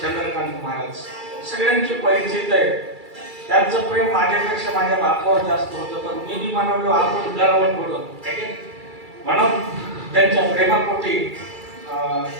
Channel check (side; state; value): left; late; 2.3 ms